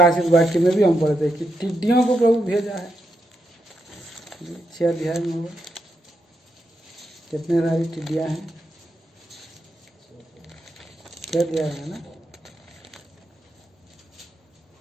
वाक्य में भी हम पढ़ते हैं कि टिड्डियों को प्रभु भेजा है। 6 अध्याय में होगा, कितने सारी टिड्डियां हैं? 6 अध्याय है ना।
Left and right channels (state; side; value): normal; both; correlation 0.83